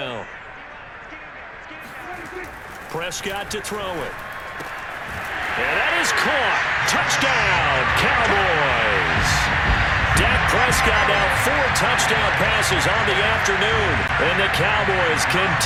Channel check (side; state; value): both; identical; correlation 1.00